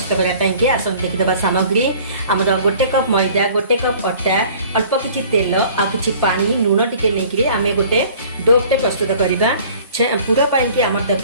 करने आसतु देखीदे सामग्री आमर गोटे कप मैदा, गोटे कप अटा, अल्प किछि तेल आ किछि पानी लुण टिके नहीं आम गोटे डोटे प्रस्तुत करवा। पूरा पाई आम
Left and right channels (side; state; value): both; inverted; correlation -0.49